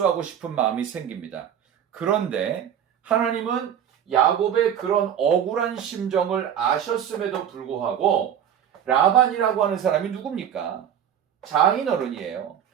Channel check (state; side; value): quieter; left; 9.2 dB